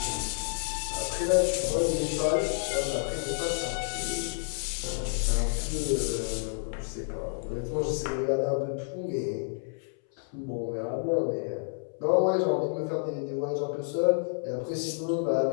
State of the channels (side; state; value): right; silent; 58 dB below the other